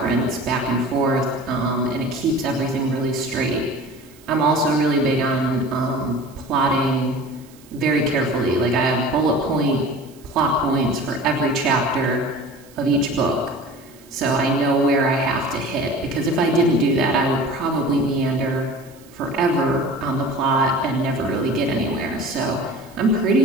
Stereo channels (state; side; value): noise; right; hiss, 26 dB below the sound